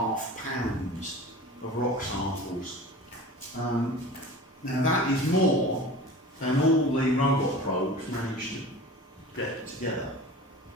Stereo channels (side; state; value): both; normal; correlation 0.38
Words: pounds of rock samples. Now that is more than all the robot probes managed to get together.